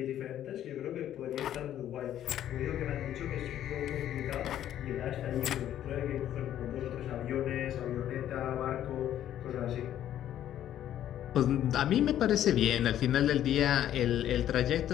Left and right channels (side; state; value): right; quieter; 11.4 dB